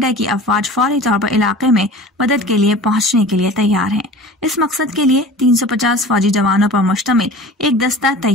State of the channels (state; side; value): normal; both; correlation 0.39